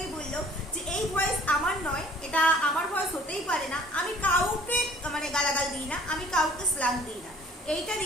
বললো যে এই ভয়েস আমার নয়, এটা আমার ভয়েস হতেই পারে না, আমি কাউকে মানে গালাগাল দিই না, আমি কাউকে স্ল্যাং দিই না। এইটা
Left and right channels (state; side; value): normal; both; correlation 0.54